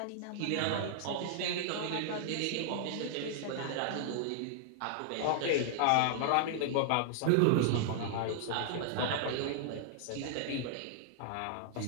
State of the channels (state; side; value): different; both; correlation -0.01